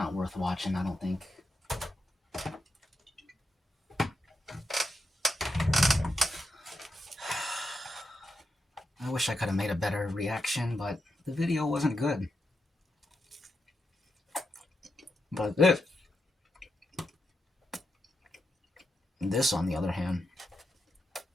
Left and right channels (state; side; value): normal; both; correlation 0.86